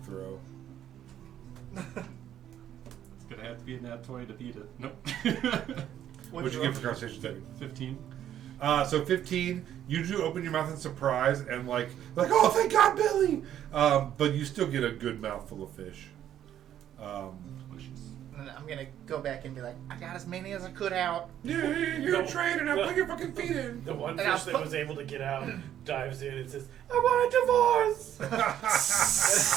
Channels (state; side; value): quieter; left; 10.9 dB